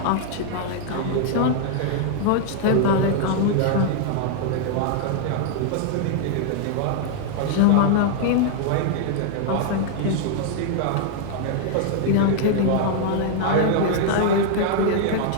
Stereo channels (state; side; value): different; both; correlation -0.01